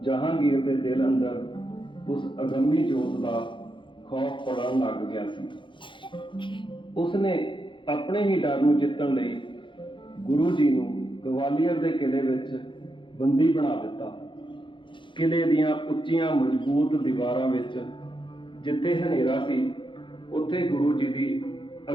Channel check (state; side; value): late; right; 0.24 ms